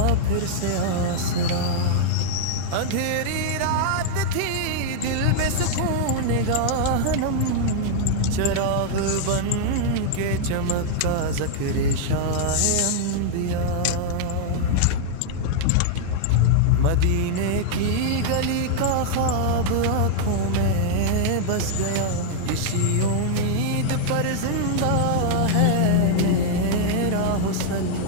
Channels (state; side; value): different; both; correlation -0.01